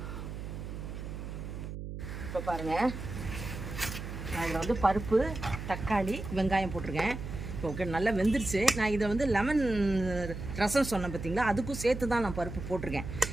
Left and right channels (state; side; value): noise; right; hum, 8 dB below the sound